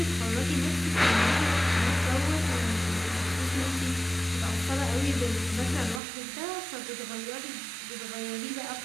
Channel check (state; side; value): drops out; left; at 6.0 s